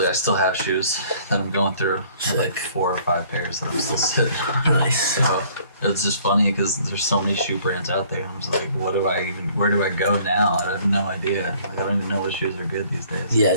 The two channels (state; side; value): inverted; both; correlation -0.57